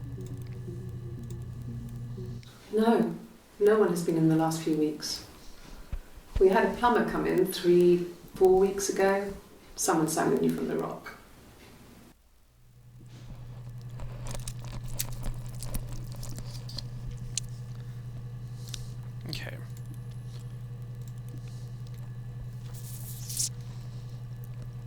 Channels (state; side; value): identical; both; correlation 1.00